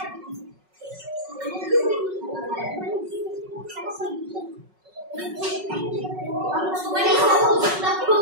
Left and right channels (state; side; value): late; left; 5.4 ms